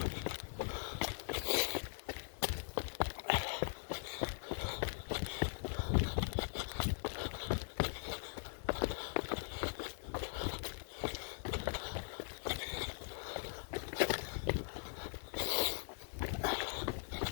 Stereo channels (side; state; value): right; silent; digital silence